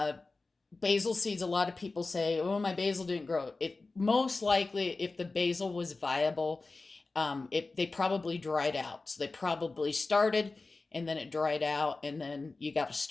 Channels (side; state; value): right; quieter; 3.6 dB